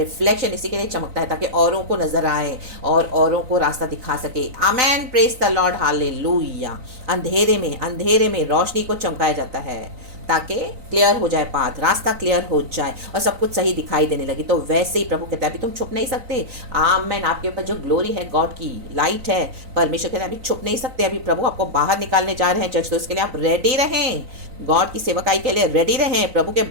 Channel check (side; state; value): left; late; 3.9 ms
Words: इसी के लिए चमकता है ताकि औरों को नजर आए और औरों को रास्ता दिखा सके। आमीन, प्रेज द लॉर्ड, हालेलुया। अंधेरे में रोशनी को चमकाया जाता है ताकि क्लियर हो जाए पाथ, रास्ता क्लियर हो जाए और सब कुछ सही दिखाई देने लगे। तो वैसे ही प्रभु कहता है अभी तुम छुप नहीं सकते। आमीन। आपके ऊपर जो ग्लोरी है, गॉड की लाइट है, परमेश्वर कहता है अभी छुप नहीं सकते। अभी प्रभु आपको बाहर निकालने जा रहे हैं चर्च, तो इसके लिए आप रेडी रहें। गॉड की सेवकाई के लिए रेडी रहें, प्रभु के